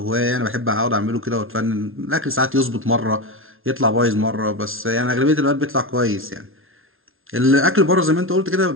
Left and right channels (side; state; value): left; late; 0.60 ms